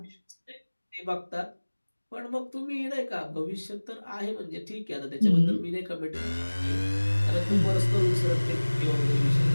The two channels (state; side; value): inverted; both; correlation -1.00